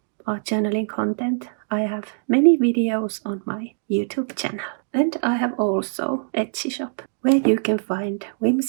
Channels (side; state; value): left; silent; digital silence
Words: art journaling content, I have many videos on my YouTube channel. And I have also Etsy shop, where you can find